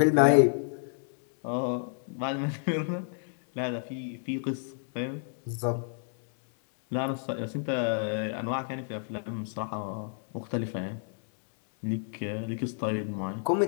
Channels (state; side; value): silent; right; digital silence